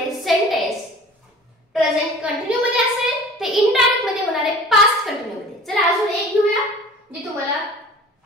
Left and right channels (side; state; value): both; normal; correlation 0.44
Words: सेंटेन्स प्रेझेंट कंटिन्यू मध्ये असेल ते इनडायरेक्ट मध्ये होणार आहे पास्ट कंटिन्यू मध्ये. चला अजून एक घेऊया जे तुम्हाला